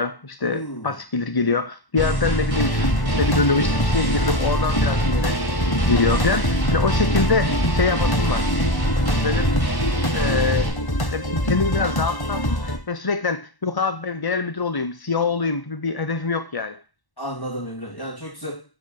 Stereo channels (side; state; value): right; late; 1.1 ms